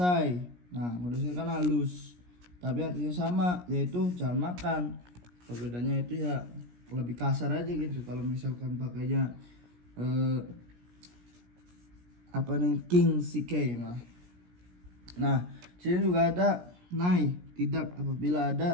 Nah, kudasai kan halus, tapi artinya sama, yaitu jangan makan. Perbedaannya itu ya lebih kasar aja gitu. Kalau misalkan pakainya apa nih King Shikei mah. Nah, sini juga ada nai tidak apabila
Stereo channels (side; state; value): left; late; 17 ms